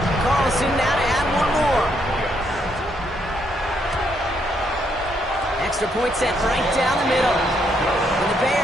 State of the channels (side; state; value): both; normal; correlation 0.74